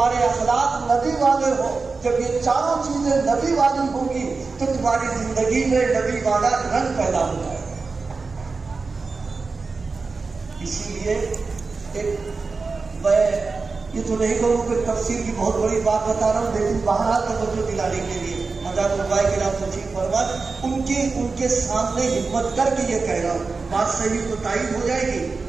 اخلاق نبی والے ہو. جب یہ چاروں چیزیں نبی والی ہوں گی تو تمہاری زندگی میں نبی والا رنگ پیدا ہو جائے گا. اسی لیے میں یہ تو نہیں کہوں کہ تفسیر کی بہت بڑی بات بتا رہا ہوں، لیکن بہرحال توجہ دلانے کے لیے حضرت علماء کرام تشریف فرما ان کے سامنے ہمت کر کے یہ کہہ رہا ہوں. بات صحیح تو تائید ہو جائے گی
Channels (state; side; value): quieter; left; 4.3 dB